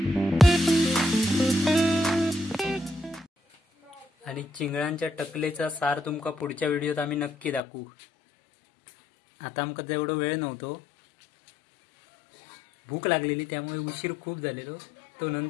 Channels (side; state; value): right; drops out; at 7.6 s